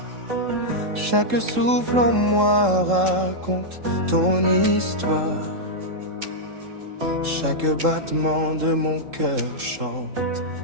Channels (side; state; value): left; late; 3.7 ms